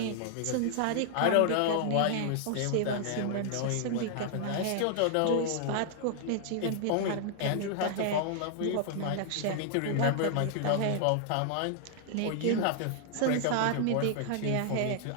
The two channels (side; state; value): both; different; correlation 0.00